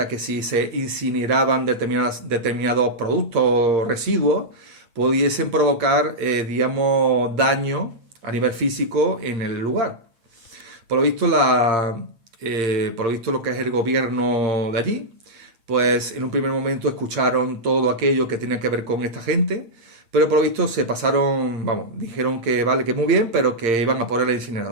a que si se incineraban determinados productos o residuos, pudiesen provocar, digamos, daño a nivel físico en el lugar. Por lo visto, por lo visto lo que es el gobierno de allí, pues en un primer momento escucharon todo aquello que tenía que ver con esta gente, pero por lo visto se pasaron, vamos, dijeron que vale, que muy bien, pero que iban a poner la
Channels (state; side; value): late; left; 8.8 ms